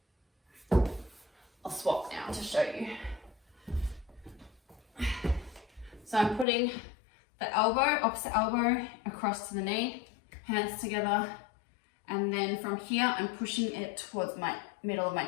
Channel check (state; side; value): drops out; right; at 6.5 s